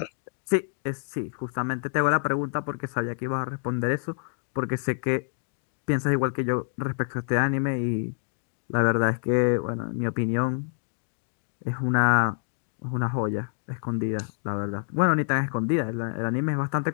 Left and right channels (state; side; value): silent; right; digital silence